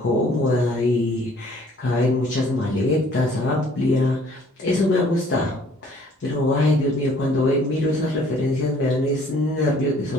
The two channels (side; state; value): both; normal; correlation 0.57